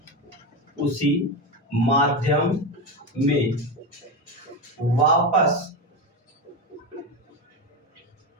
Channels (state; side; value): normal; both; correlation 0.17